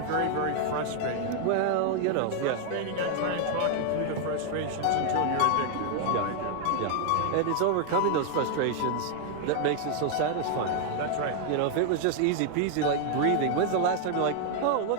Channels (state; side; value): different; both; correlation 0.00